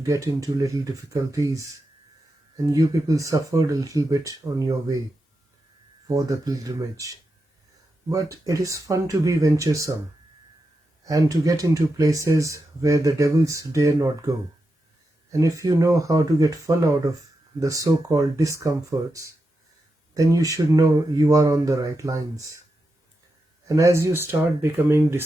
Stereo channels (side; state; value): both; normal; correlation 0.88